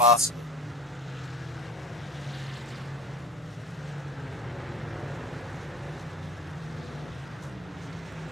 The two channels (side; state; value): both; normal; correlation 0.42